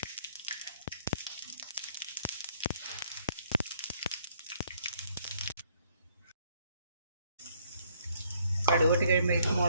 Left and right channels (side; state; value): both; inverted; correlation -0.65